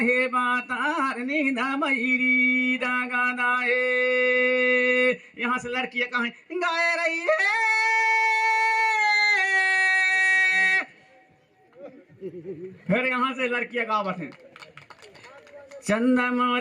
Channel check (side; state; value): both; identical; correlation 1.00